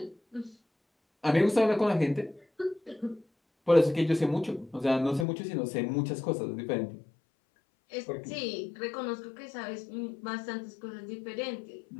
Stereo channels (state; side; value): drops out; right; at 5.2 s